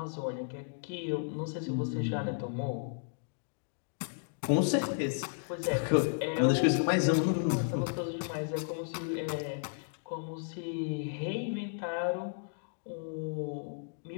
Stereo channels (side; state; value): right; silent; digital silence